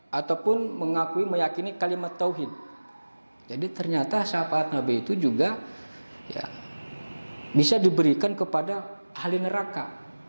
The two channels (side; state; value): both; inverted; correlation -1.00